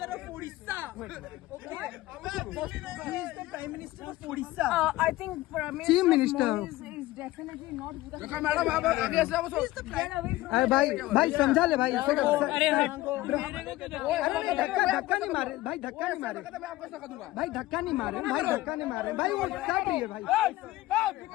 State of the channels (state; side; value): quieter; right; 17.4 dB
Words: Prime minister of Orissa. I think Chief Minister is definitely not. Madam आप आगे से आओ। अरे भाई समझा ले भाई। अरे धक्का नहीं मारे भाई, धक्का नहीं मारे भाई, धक्का नहीं मारे भाई, धक्का नहीं मारे भाई, वो काट रही है भाई।